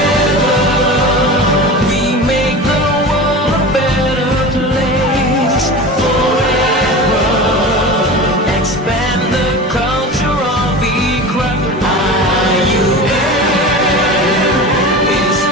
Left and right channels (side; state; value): both; normal; correlation 0.31